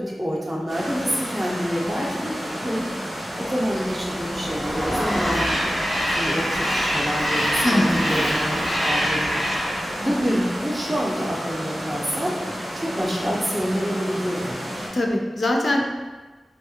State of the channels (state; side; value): normal; both; correlation 0.94